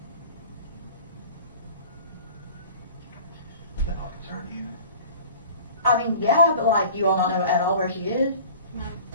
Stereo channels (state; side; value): inverted; both; correlation -0.44